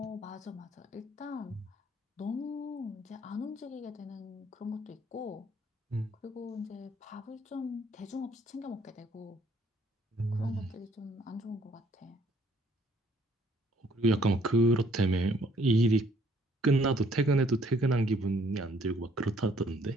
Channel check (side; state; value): both; normal; correlation 0.63